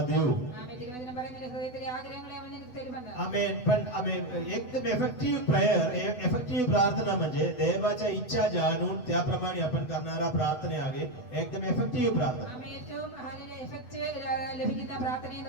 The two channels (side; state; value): right; late; 8.0 ms